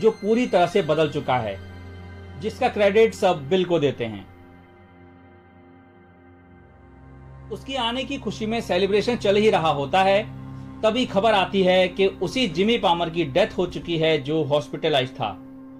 पूरी तरह से बदल चुका है, जिसका क्रेडिट सब बिल को देते हैं। उसकी आने की खुशी में सेलिब्रेशन चल ही रहा होता है, तभी खबर आती है कि उसी जिमी पामर की डेथ हो चुकी है जो हॉस्पिटलाइज था।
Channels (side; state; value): both; identical; correlation 1.00